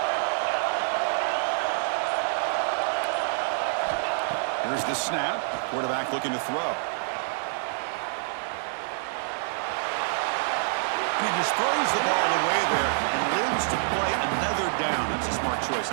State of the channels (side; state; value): left; silent; 60 dB below the other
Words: Here's the snap. Quarterback looking to throw. And he just throws the ball away there and lives to play another down. That's a smart choice